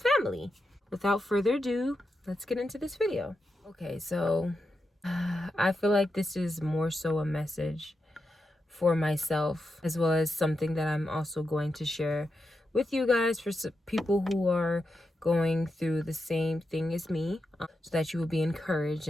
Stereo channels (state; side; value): normal; both; correlation 0.87